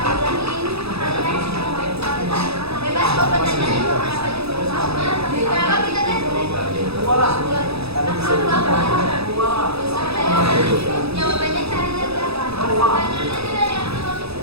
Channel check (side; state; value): left; late; 0.78 ms